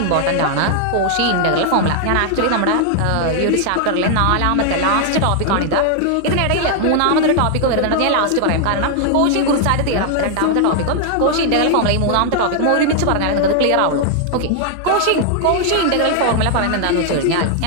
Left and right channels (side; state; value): both; different; correlation 0.00